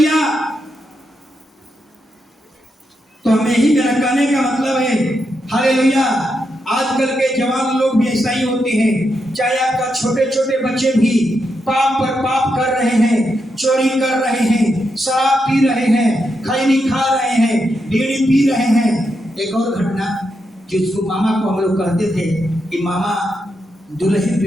तो हमें ही मेरा कहने का मतलब है, हालेलुया, आजकल के जवान लोग भी ऐसा ही होते हैं। चाहे आपका छोटे छोटे बच्चे भी पाप पर पाप कर रहे हैं, चोरी कर रहे हैं, शराब पी रहे हैं, खैनी खा रहे हैं, बीड़ी पी रहे हैं। एक और घटना, जिसको मामा को हम लोग कहते थे कि मामा दुल्हन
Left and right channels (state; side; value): normal; both; correlation 0.84